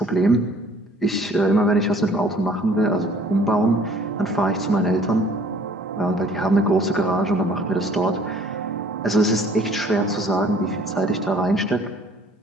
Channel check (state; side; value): normal; both; correlation 0.54